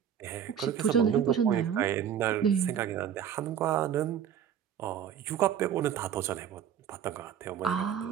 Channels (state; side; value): quieter; left; 8.8 dB